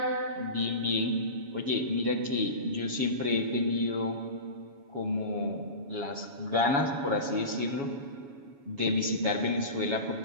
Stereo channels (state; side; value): late; left; 7.2 ms